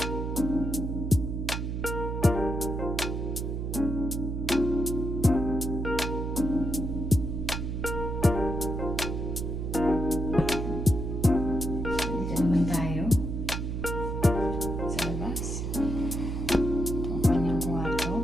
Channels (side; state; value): right; noise; hum, 3 dB below the sound